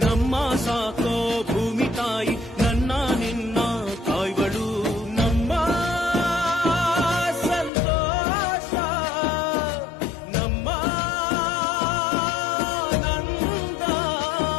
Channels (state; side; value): drops out; right; at 7.7 s